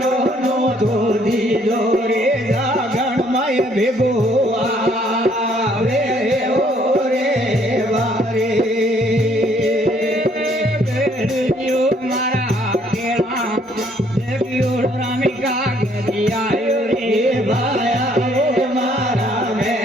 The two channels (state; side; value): normal; both; correlation 0.65